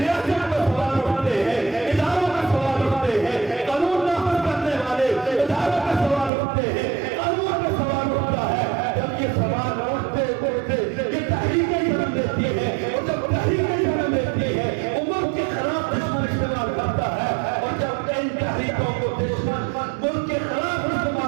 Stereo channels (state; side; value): drops out; left; at 6.3 s